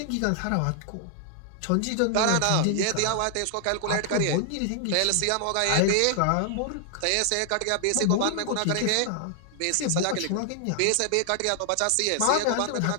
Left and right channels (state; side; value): different; both; correlation 0.00